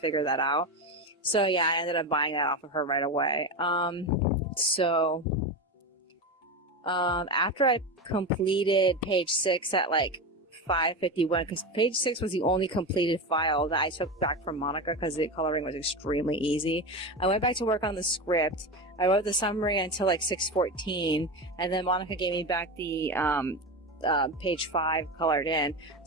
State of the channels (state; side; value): normal; both; correlation 0.20